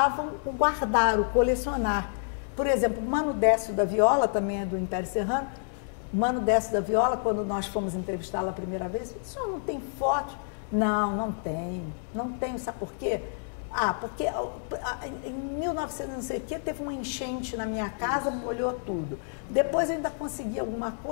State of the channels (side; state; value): right; silent; digital silence